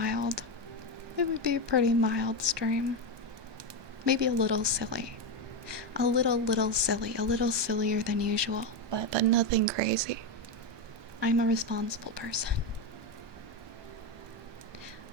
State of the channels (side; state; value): left; late; 1.2 ms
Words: It would be a pretty mild stream. Maybe a little silly. A little silly. A little sillier than usual. But nothing crazy. I'm a responsible person.